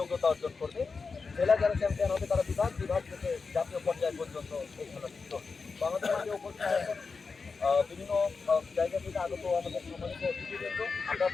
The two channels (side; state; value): right; quieter; 4.7 dB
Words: অর্জন করবে। জেলা যারা চ্যাম্পিয়ন হবে তারা বিভাগ থেকে জাতীয় পর্যায় পর্যন্ত এই খেলা যুক্ত হবে। তো আমাদের মাঝে উপস্থিত আছেন বিভিন্ন জায়গা থেকে আগত আমাদের সম্মানিত অতিথিবৃন্দ। আমরা